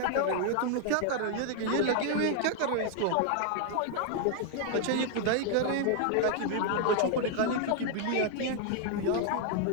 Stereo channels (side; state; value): both; different; correlation 0.00